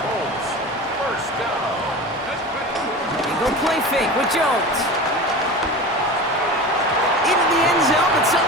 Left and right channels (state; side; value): normal; both; correlation 0.32